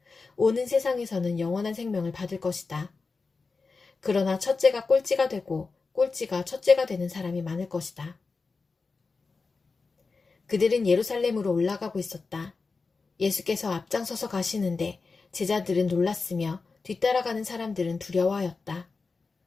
오는 세상에서는 영원한 생명을 받을 것이다. 그러나 첫째가 꼴찌가 되고 꼴찌가 첫째가 되는 사람이 많을 것이다. 그들은 예루살렘으로 올라가고 있었다. 예수께서 앞장서서 가시는데 제자들은 놀랐으며 뒤따라가는 사람들은 두려워하였다.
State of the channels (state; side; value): quieter; right; 4.3 dB